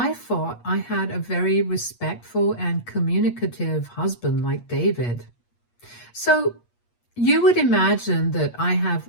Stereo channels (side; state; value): right; late; 8.4 ms